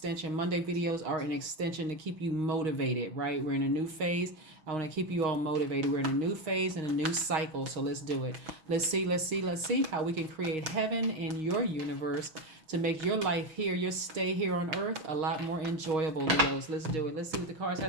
Monday videos are an extension to keep you motivated, right? We're in a new phase. I want to keep you all motivated. We're in a new phase and a new cycle, so let's do it. Let's see how we can create heaven in your universe to make your life here, your stay here on earth, a lot more enjoyable, Leos. Let's do it. Let's see what the cards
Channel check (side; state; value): left; late; 6.4 ms